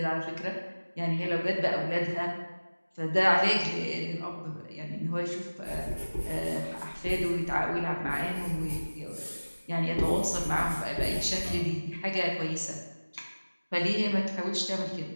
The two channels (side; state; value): both; inverted; correlation -1.00